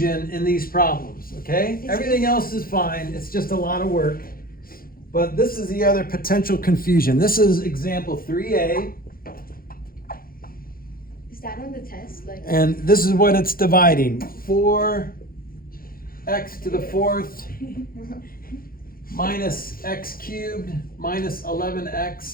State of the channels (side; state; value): right; late; 0.42 ms